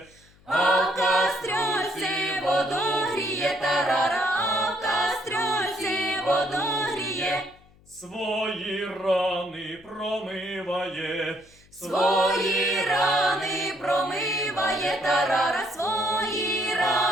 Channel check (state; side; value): noise; left; hum, 28 dB below the sound